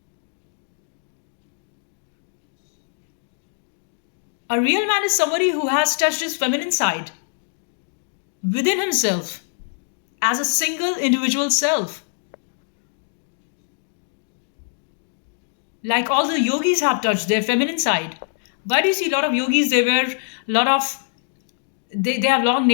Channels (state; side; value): silent; right; digital silence